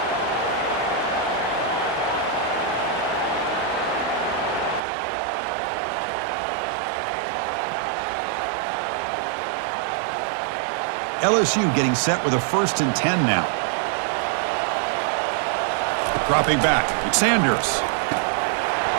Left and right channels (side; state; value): left; drops out; at 4.8 s